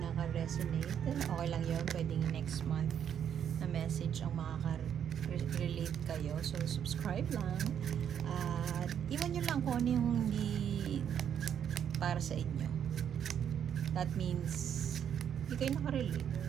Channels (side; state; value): left; quieter; 8.8 dB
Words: naka-resonate, okay lang yun, pwedeng next month na message ang makaka-relate kayo. So subscribe lang. At iwan nyo lang kung ano yung hindi para sa inyo. That means hindi kayo nakarelate.